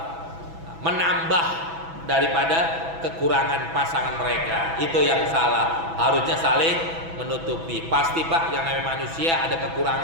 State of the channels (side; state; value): left; late; 6.1 ms